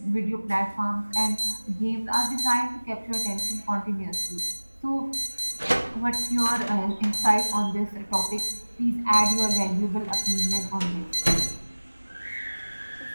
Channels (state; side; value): inverted; both; correlation -1.00